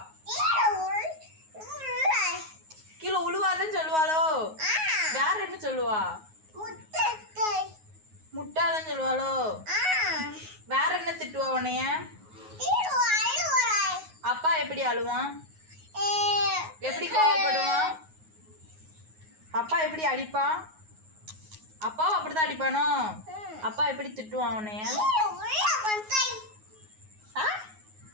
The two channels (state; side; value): late; left; 9.4 ms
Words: கீழே உழுவாதன்னு சொல்லுவாளோ? வேற என்ன சொல்லுவா? முட்டாதன்னு சொல்லுவாளோ? வேற என்ன திட்டுவா உன்னைய? அப்பா எப்படி அழுவான்? எப்படி கோவப்படுவான்? அப்பா எப்படி அடிப்பான்? அப்பாவும் அப்படிதான் அடிப்பானோ? அப்பா எப்படி திட்டுவான் உன்னைய?